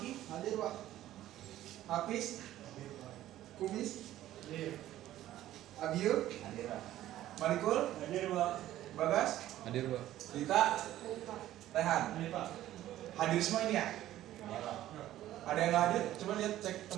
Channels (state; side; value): quieter; left; 13.7 dB